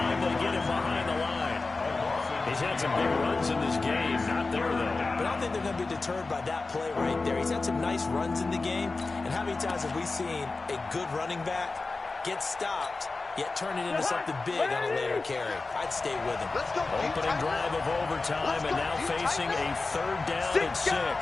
they get him behind the line. He's had some big runs in this game. Not there, though. But I don't think they're going to be deterred by that play right there. He's had some nice runs in the game. And how many times have we seen a good running back get stopped, yet turn it into something big on a later carry? I'd stay with him. Opening drive of overtime, and now facing a 3rd down and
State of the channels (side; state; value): right; quieter; 3.7 dB